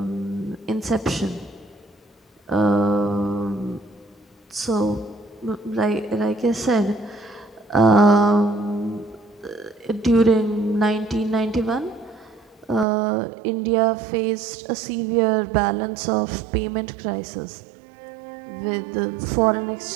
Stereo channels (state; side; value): drops out; left; at 12.9 s